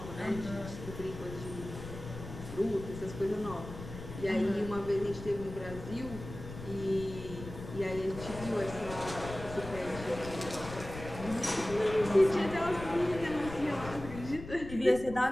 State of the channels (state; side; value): noise; left; rumble, 11 dB below the sound